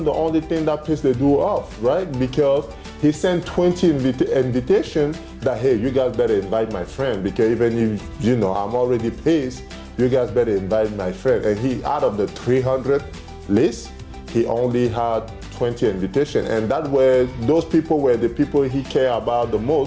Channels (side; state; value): both; identical; correlation 1.00